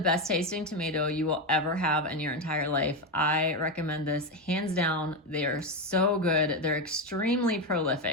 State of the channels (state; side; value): normal; both; correlation 0.11